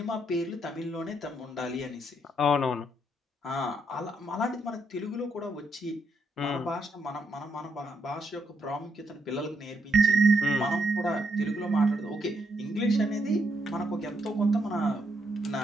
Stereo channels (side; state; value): both; normal; correlation 0.77